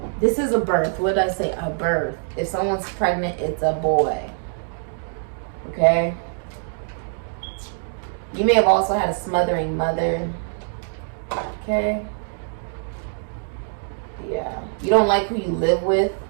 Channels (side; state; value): left; silent; 63 dB below the other